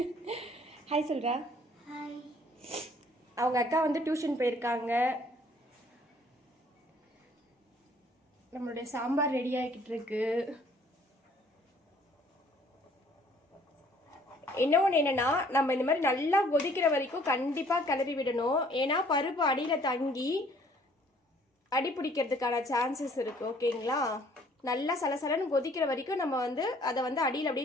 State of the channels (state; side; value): normal; both; correlation 0.59